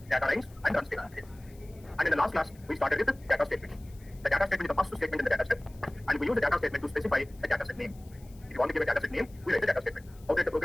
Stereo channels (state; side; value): noise; left; hiss, 27 dB below the sound